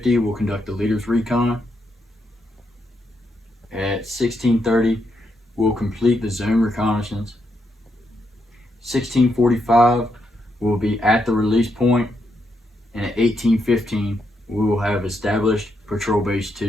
we'll conduct the leaders recon. At 1630, we'll complete the zone reconnaissance. 1645, we'll be at the release point, and at 1815, we will have established Patrol Base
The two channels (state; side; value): normal; both; correlation 0.80